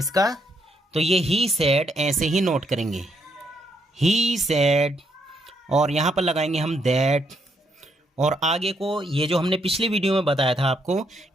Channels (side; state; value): both; normal; correlation 0.75